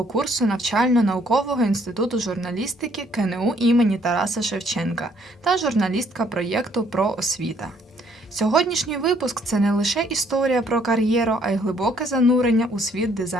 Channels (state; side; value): normal; both; correlation 0.65